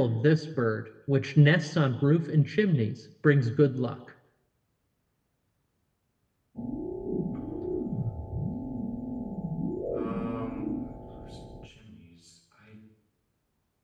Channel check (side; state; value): both; identical; correlation 1.00